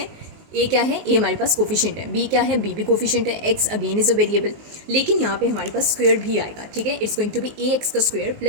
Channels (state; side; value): late; left; 19 ms